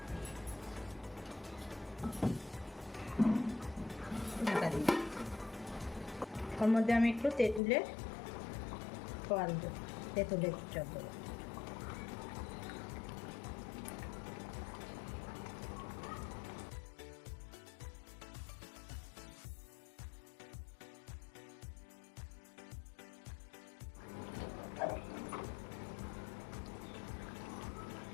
ঢাকা দিয়ে ওর মধ্যে আমি একটু তেঁতুলের জল দেবো, তেঁতুলের জল দেবো।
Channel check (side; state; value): right; drops out; at 7.6 s